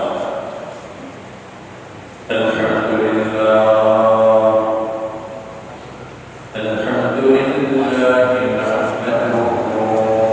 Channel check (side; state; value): both; identical; correlation 1.00